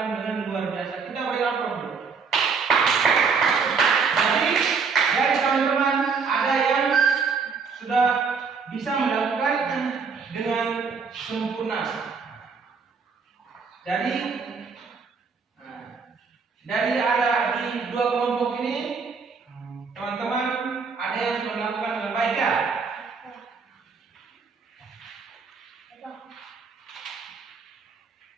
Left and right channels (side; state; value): left; quieter; 5.3 dB